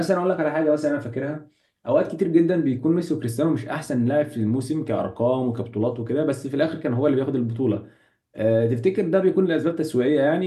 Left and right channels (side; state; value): both; identical; correlation 1.00